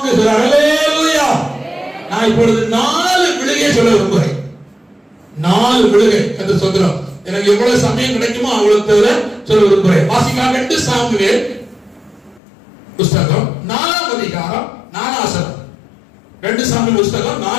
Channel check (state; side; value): drops out; right; at 12.4 s